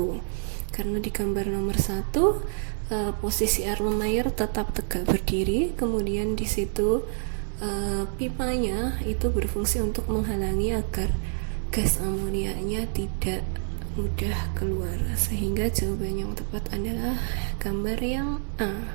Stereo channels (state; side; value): silent; left; digital silence